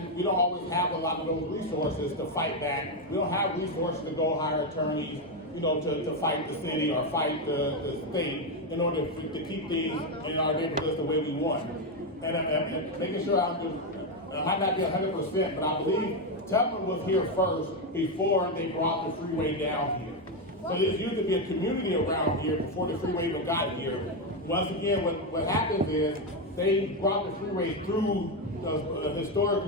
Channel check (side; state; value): both; normal; correlation 0.07